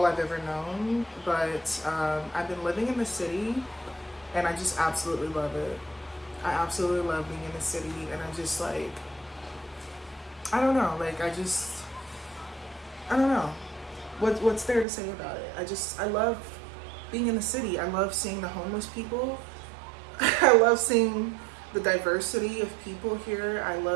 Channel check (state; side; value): drops out; left; at 14.9 s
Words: I've ever known. But I've been living in the city, and I just absolutely love it. I absolutely love being in the city, and I'm just like, I don't know, like I don't know what's there to say about it. I love being in the city. I love seeing the homeless people. I love seeing the diversity of people here. I